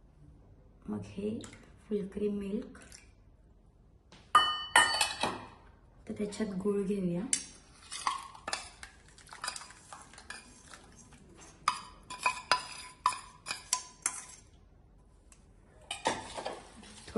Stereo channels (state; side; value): identical; both; correlation 1.00